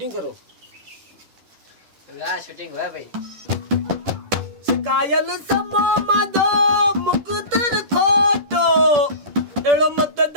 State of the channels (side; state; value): left; late; 10 ms